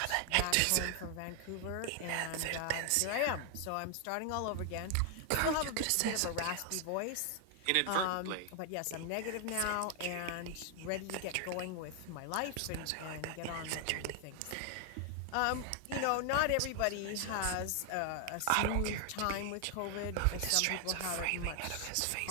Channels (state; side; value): different; both; correlation 0.00